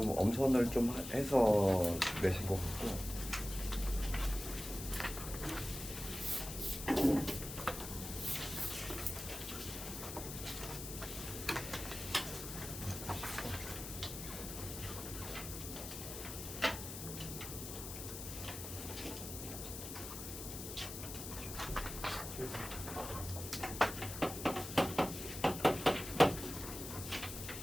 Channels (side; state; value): left; noise; hiss, 8 dB below the sound